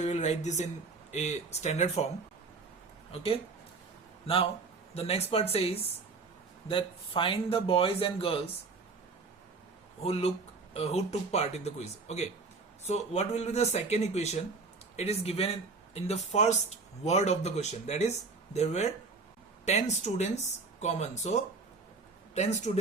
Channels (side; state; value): left; quieter; 4.1 dB